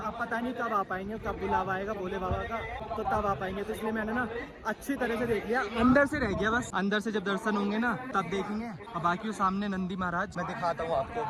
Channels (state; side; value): identical; both; correlation 1.00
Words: पता नहीं कब आ पाएंगे, कब बुलावा आएगा भोले बाबा का तो तब आ पाएंगे। तो इसलिए मैंने ना अच्छी तरह से देख लिया, अंदर से रह गया बस। अंदर से जब दर्शन होंगे ना तब देखेंगे। और बाकी वो सामने नंदी महाराज मैं दिखाता हूँ आपको